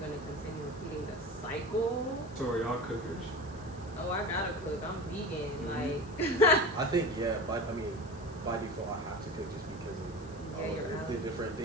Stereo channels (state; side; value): noise; left; hiss, 24 dB below the sound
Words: gonna continue repeating the cycle? So are y'all cookers? Oh, I gotta cook. I'm vegan. Like I think by default I have to cook just because of the different